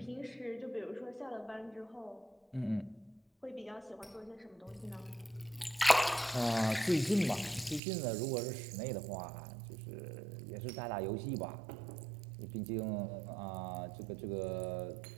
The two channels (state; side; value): drops out; left; at 7.8 s